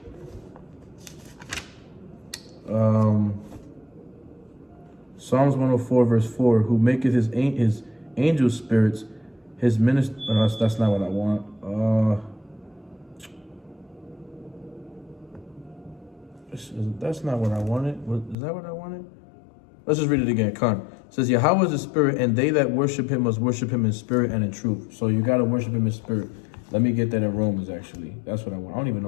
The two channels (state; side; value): drops out; right; at 18.4 s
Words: Psalms 104 verse 4, who maketh his angel spirits his minister. That's not what I want. That's not what I wanted. Is that what I wanted? Let's just read it again. It says, Yahweh is a spirit, and they that worship him must worship him in spirit and in truth. So you got to worship him in spirit. Let me get that in Romans, actually. That's what I want. I don't even